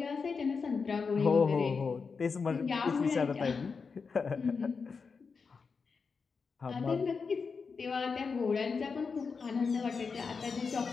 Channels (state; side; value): quieter; right; 5.2 dB